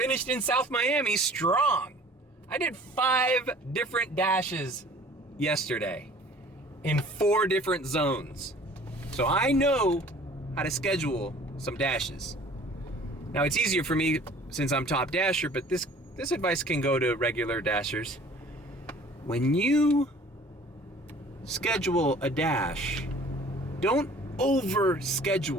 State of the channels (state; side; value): normal; both; correlation 0.50